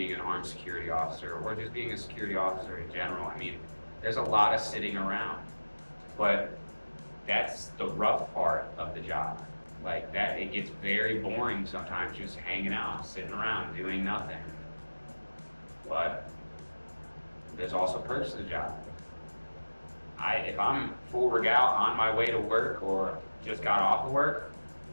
an armed security officer, or just being a security officer in general. I mean, there's a lot of sitting around, but that's the rough part of the job. Like that, it gets very boring sometimes just hanging out, sitting around, doing nothing. But there's also perks to the job. If I'm full regal on my way to work or just got off of work,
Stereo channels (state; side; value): inverted; both; correlation -1.00